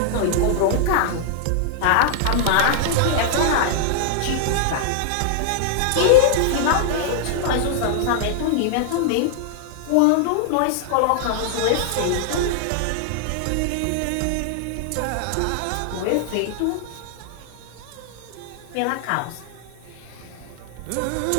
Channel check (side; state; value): both; different; correlation -0.01